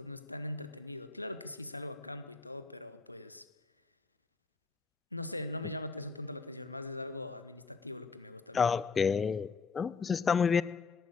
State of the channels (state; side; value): quieter; right; 5.0 dB